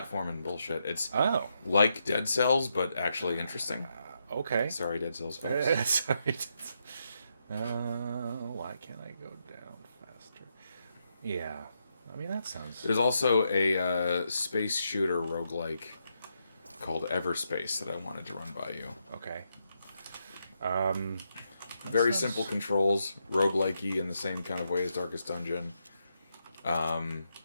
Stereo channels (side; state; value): both; inverted; correlation -0.81